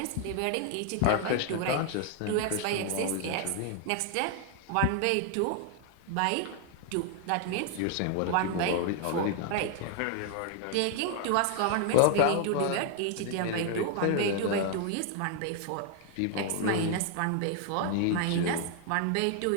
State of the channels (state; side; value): different; both; correlation 0.00